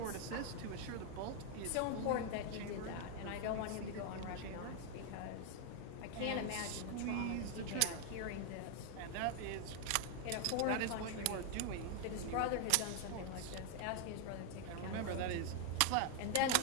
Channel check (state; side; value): different; both; correlation 0.00